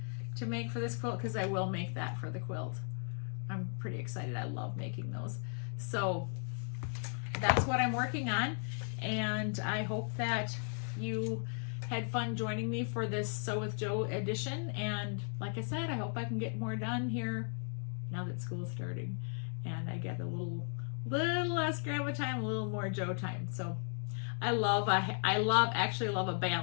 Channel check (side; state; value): right; silent; 54 dB below the other